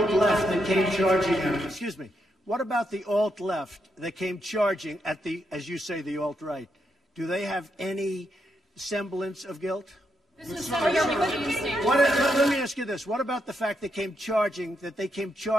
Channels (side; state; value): both; normal; correlation 0.81